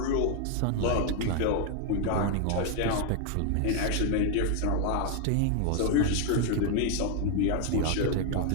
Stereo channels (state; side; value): different; both; correlation 0.01